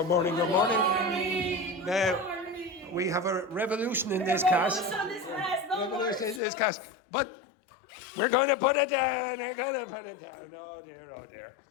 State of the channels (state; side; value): drops out; right; at 6.4 s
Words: morning, good morning. Morning. Now, we have a revolution in this class. Revolution in this class. But we're going to put it down. We're going to put it down. Oh dear, oh dear.